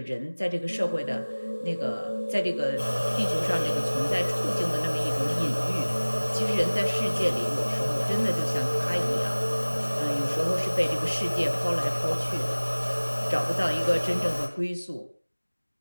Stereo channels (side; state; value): both; inverted; correlation -1.00